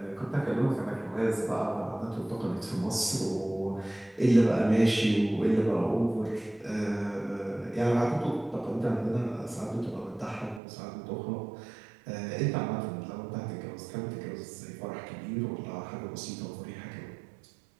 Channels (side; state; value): left; drops out; at 10.6 s